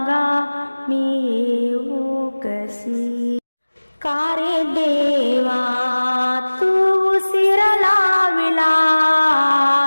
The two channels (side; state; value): both; inverted; correlation -1.00